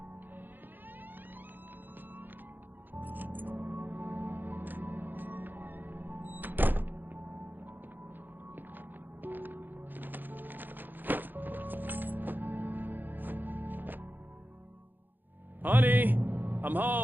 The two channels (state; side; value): late; left; 0.089 ms